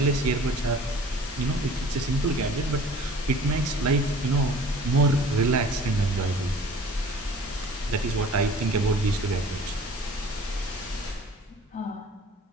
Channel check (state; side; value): normal; both; correlation 0.47